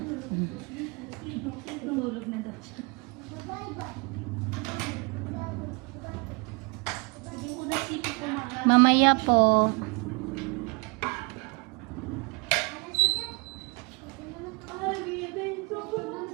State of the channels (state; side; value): quieter; left; 29.5 dB